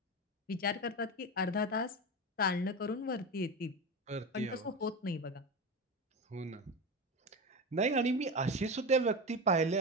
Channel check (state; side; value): normal; both; correlation 0.21